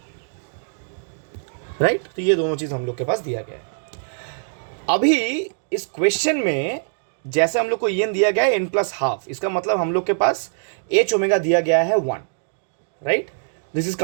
right. तो ये दोनों चीज हम लोग के पास दिया गया है. अभी इस क्वेश्चन में जैसे हम लोग को EN दिया गया है n प्लस हाफ, इसका मतलब हम लोग के पास H ओमेगा दिया गया है 1, right. This is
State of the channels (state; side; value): silent; left; digital silence